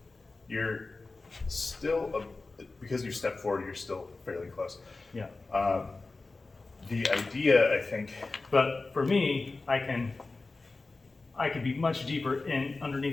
You're still, because you step forward, you're still fairly close. yeah. The idea, I think, But for me, I could be much deeper in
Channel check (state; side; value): quieter; right; 3.6 dB